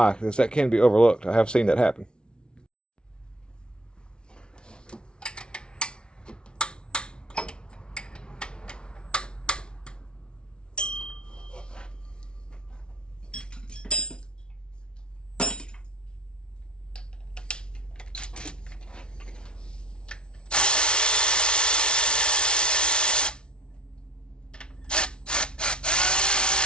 because that can be overlooked. I have seen that happen.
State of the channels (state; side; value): late; right; 0.056 ms